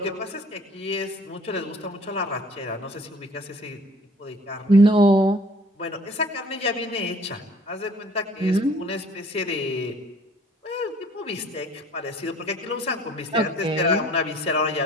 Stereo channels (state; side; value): normal; both; correlation 0.53